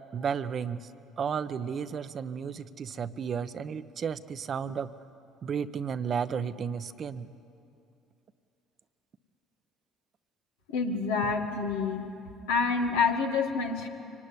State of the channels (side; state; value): both; normal; correlation 0.47